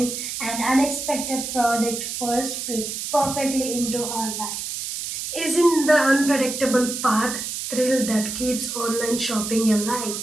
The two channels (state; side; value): noise; right; hiss, 5 dB below the sound